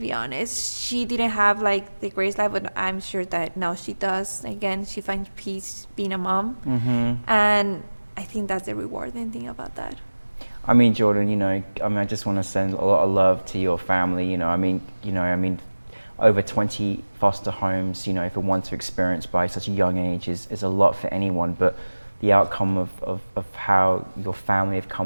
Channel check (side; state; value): both; inverted; correlation -1.00